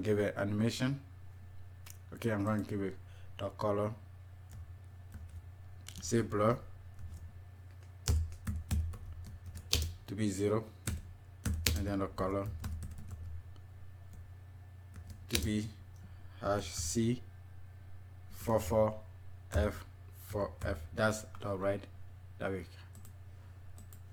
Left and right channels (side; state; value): both; identical; correlation 1.00